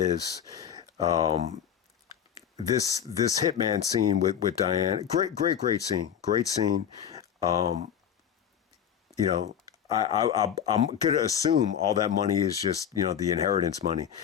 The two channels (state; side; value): quieter; right; 8.8 dB